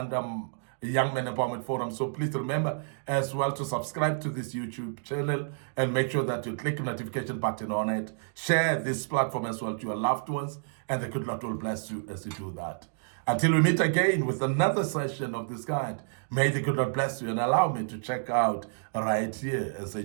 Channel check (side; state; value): left; silent; digital silence